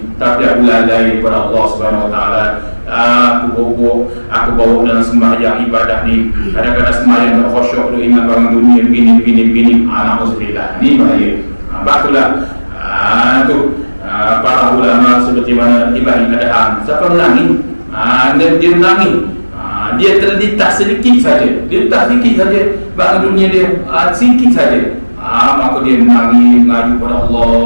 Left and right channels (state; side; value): inverted; both; correlation -1.00